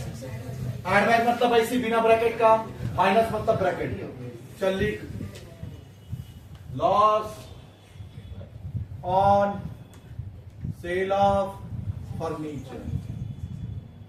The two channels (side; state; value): both; identical; correlation 1.00